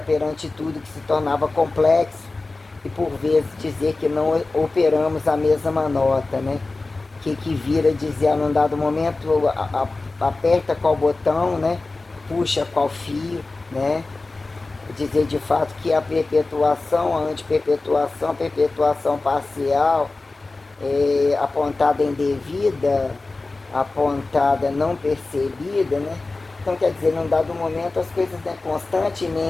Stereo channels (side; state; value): right; quieter; 3.4 dB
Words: perante tudo que se tornava complexo, e por vezes dizer que não operamos a mesma nota, né? Que vira dizer num dado momento aperta qual botão, né? Puxa qual fio, né? Dizer de fato que a perpetuação, a antiperpetuação, a perpetuação parcial, apontada indevida, apontada não percebida, né? Então, quer dizer, num dado momento as coisas, né,